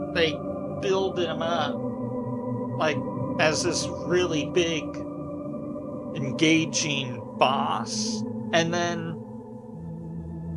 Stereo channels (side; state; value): both; identical; correlation 1.00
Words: they build him up like as this really big, engaging boss, and then